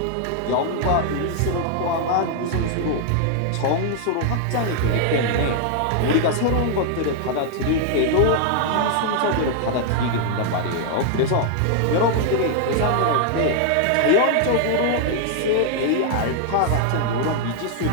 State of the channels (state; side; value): different; both; correlation 0.00